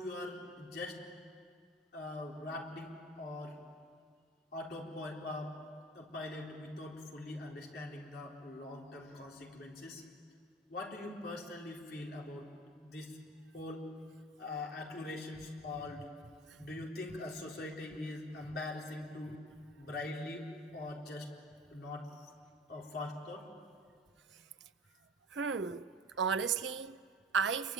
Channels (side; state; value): both; normal; correlation 0.41